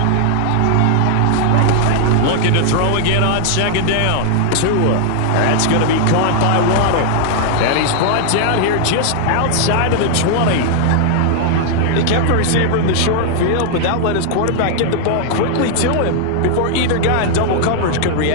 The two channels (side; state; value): both; different; correlation 0.00